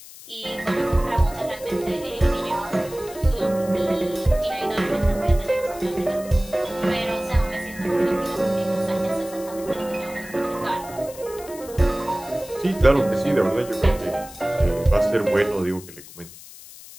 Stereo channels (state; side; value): noise; left; hiss, 17 dB below the sound